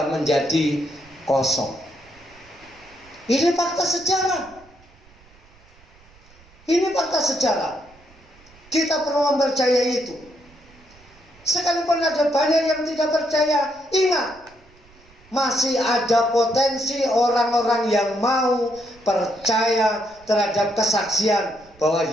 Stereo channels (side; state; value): right; noise; rumble, 27 dB below the sound